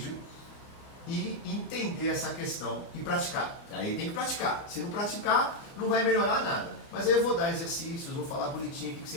e entender essa questão e praticar. Aí tem que praticar. Se não praticar, não vai melhorar nada. Mas aí eu vou dar exercícios, vou falar bonitinho o que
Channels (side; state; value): right; late; 29 ms